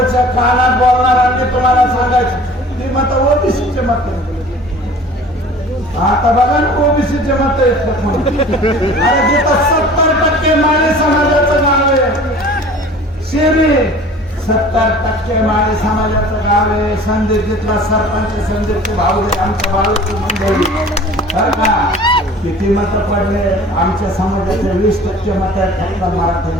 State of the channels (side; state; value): both; normal; correlation 0.45